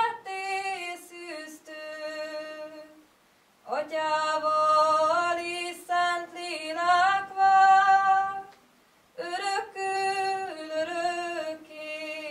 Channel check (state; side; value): identical; both; correlation 1.00